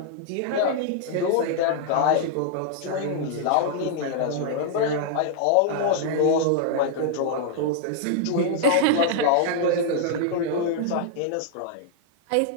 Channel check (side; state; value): both; different; correlation -0.01